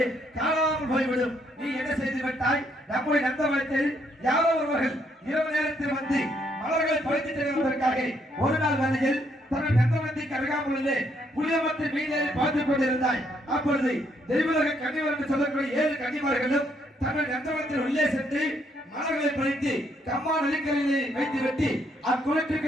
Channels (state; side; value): normal; both; correlation 0.72